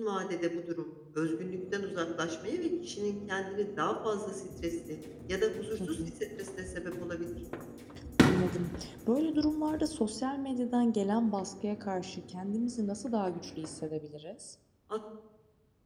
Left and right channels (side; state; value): both; identical; correlation 1.00